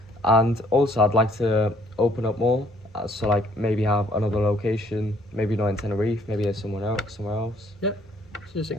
And also I'd like to open up more, so like maybe have another location, maybe not in Tenerife, maybe somewhere else. Yeah. So just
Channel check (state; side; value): normal; both; correlation 0.63